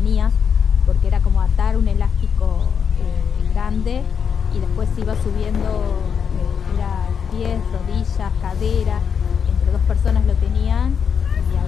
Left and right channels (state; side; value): quieter; right; 7.0 dB